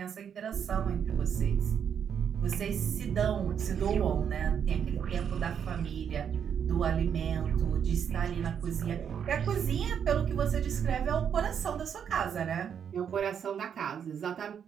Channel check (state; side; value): quieter; left; 7.9 dB